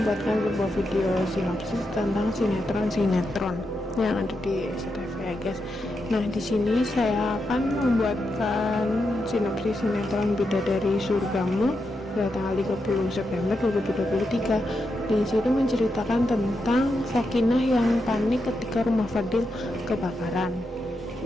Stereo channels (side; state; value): both; normal; correlation 0.85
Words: sebuah video sinopsis tentang sinetron yang ada di SCTV ya, guys. Nah, di sini saya akan membuatkan sinopsis sinetron Bidadari Surgamu pada tanggal 30 September 2023. Di situ menceritakan tentang Sakinah yang panik ketika rumah Fadil kebakaran.